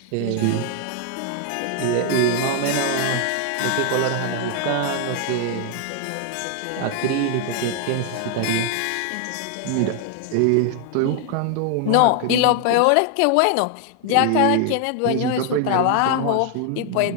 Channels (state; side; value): different; both; correlation 0.00